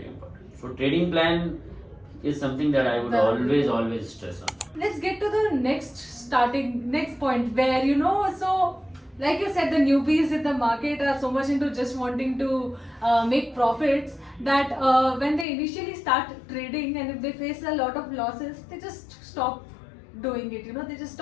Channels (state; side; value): drops out; right; at 15.5 s